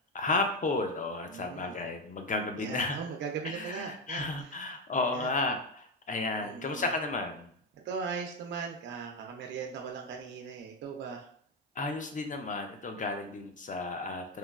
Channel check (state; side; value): normal; both; correlation 0.09